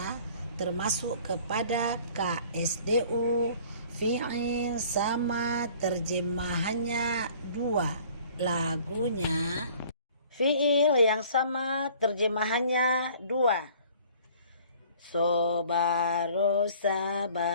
termasuk kepada KSDU, fi'il sama terjemahannya 2. Lagunya fi'il yang sama terjemahannya 2. Sobaro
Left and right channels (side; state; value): both; inverted; correlation -0.52